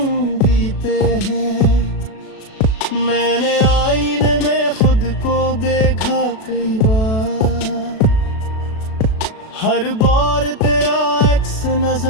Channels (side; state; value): right; late; 37 ms